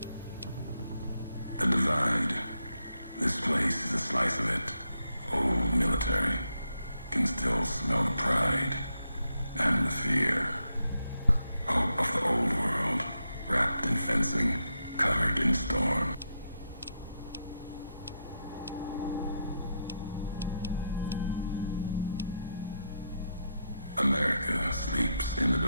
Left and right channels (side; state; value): both; inverted; correlation -0.82